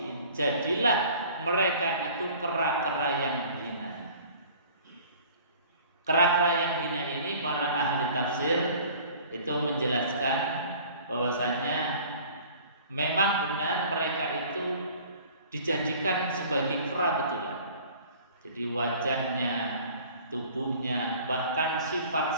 Jadilah mereka itu kera-kera yang hina. Kera-kera yang hina ini para ahli tafsir itu menjelaskan bahwasanya memang benar mereka itu dijadikan sebagai kera betulan. Jadi wajahnya, tubuhnya, bahkan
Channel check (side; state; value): both; inverted; correlation -0.48